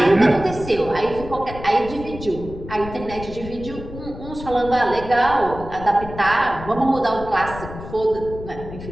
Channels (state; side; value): noise; left; rumble, 12 dB below the sound